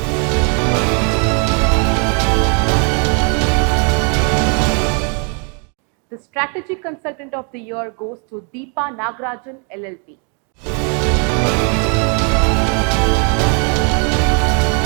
the Strategy Consultant of the Year goes to Deepa Nagarajan LLP.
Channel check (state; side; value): quieter; left; 38.5 dB